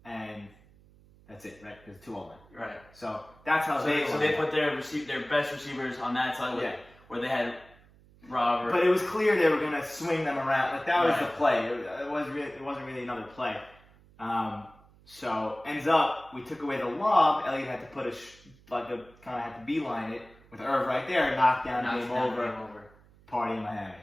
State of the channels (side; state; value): right; noise; hum, 27 dB below the sound